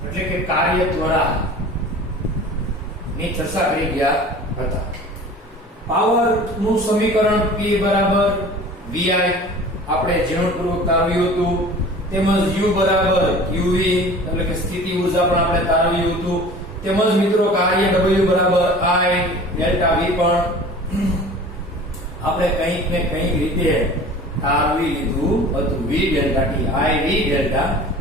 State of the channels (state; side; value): normal; both; correlation 0.42